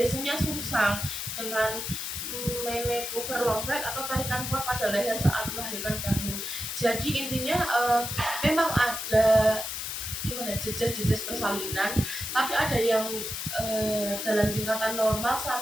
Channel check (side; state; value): left; noise; hiss, 5 dB below the sound